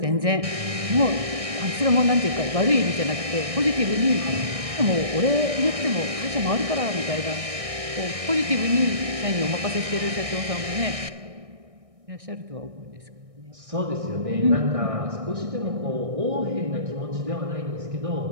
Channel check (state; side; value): late; left; 1.6 ms